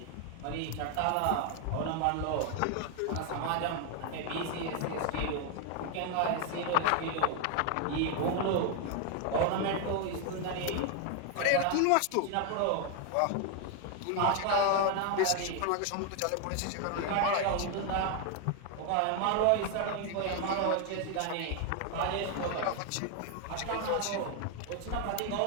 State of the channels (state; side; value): different; both; correlation 0.00